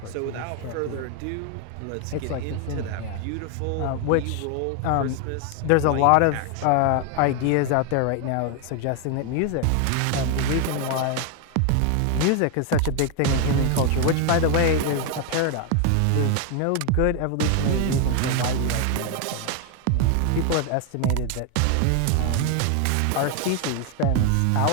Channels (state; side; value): different; both; correlation 0.01